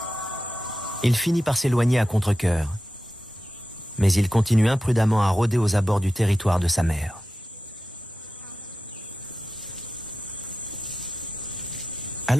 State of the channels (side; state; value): both; normal; correlation 0.91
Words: Il finit par s'éloigner à contre-cœur, mais il continue imprudemment à rôder aux abords du territoire de sa mère.